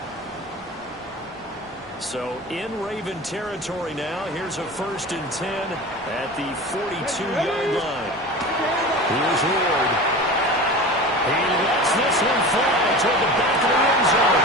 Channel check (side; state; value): both; normal; correlation 0.33